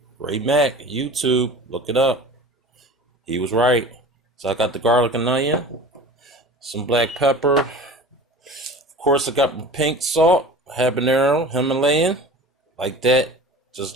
Ray Mac, YouTube, look it up. He was right. So I got the garlic and onion, some black pepper. Of course, I got my pink salt, habanero, Himalayan, like that, just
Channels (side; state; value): both; normal; correlation 0.38